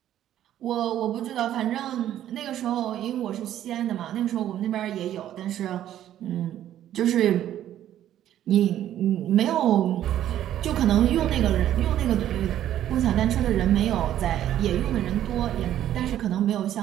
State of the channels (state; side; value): quieter; left; 11.7 dB